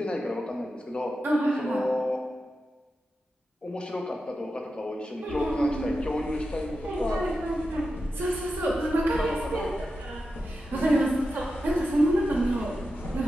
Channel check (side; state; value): both; normal; correlation 0.90